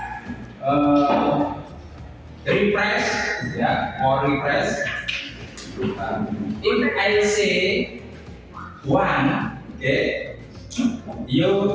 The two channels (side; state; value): both; identical; correlation 1.00